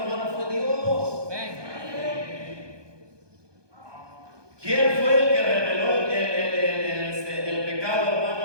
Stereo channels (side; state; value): left; late; 1.2 ms